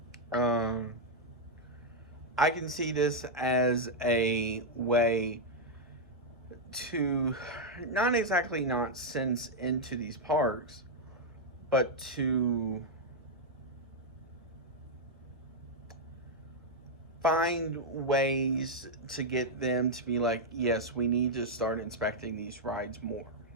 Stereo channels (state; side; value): normal; both; correlation -0.02